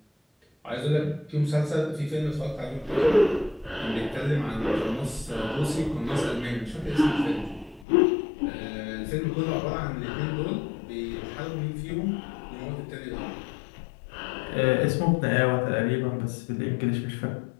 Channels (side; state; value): right; drops out; at 7.9 s